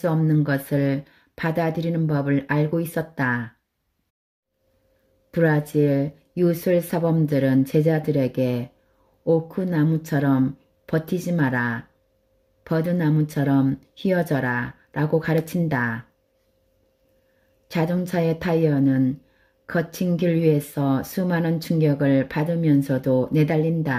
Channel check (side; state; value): both; identical; correlation 1.00